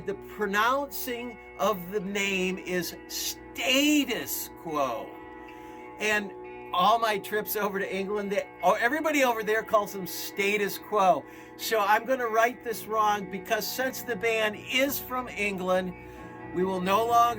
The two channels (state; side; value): identical; both; correlation 1.00